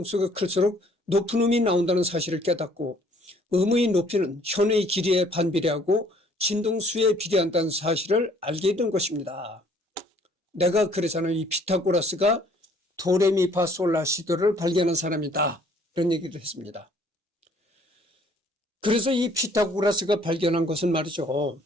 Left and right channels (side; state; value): both; normal; correlation 0.60